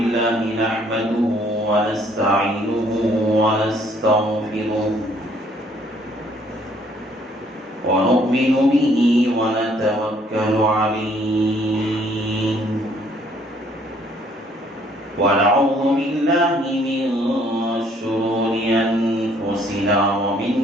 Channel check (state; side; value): normal; both; correlation 0.63